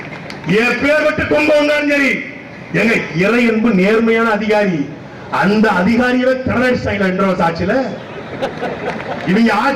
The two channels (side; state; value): both; identical; correlation 1.00